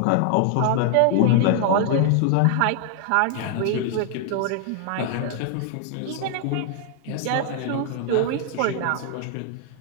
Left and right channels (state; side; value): different; both; correlation 0.00